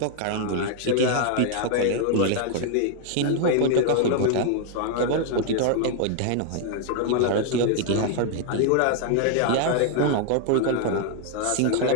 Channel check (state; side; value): different; both; correlation 0.00